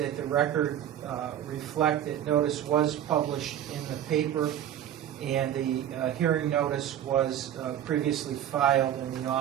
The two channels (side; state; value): left; quieter; 10.8 dB